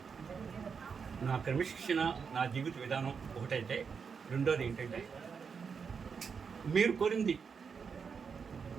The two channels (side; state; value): left; quieter; 6.0 dB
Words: నా క్రమశిక్షణ, నా జీవిత విధానం ఒకటైతే, రెండోది ఏంటంటే మీరు కోరింది